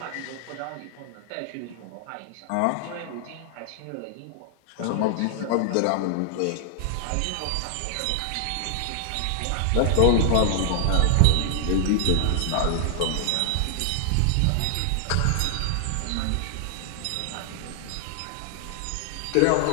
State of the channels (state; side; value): different; both; correlation -0.01